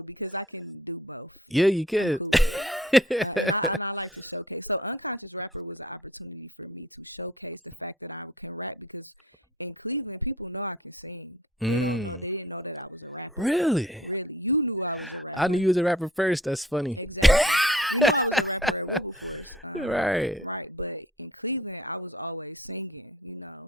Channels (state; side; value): normal; both; correlation 0.52